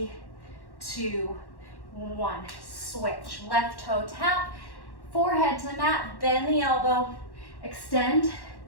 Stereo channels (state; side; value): late; right; 1.1 ms